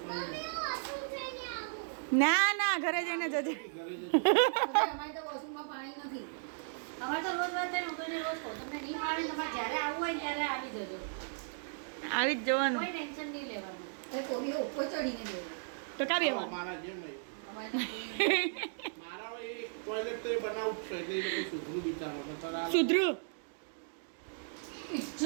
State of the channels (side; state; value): left; silent; digital silence